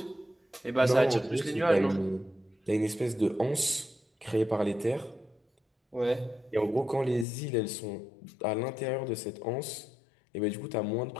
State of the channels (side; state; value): right; drops out; at 7.2 s